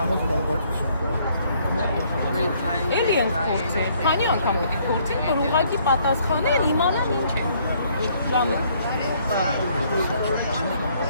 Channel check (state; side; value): inverted; both; correlation -0.65